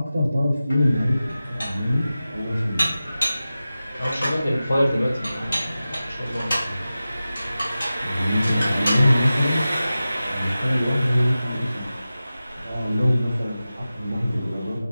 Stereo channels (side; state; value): both; inverted; correlation -0.95